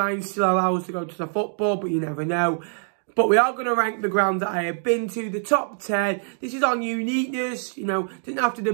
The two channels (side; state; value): left; silent; digital silence